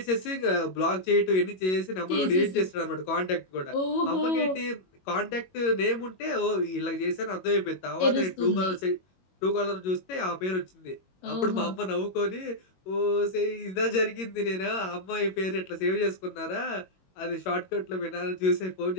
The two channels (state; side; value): late; right; 22 ms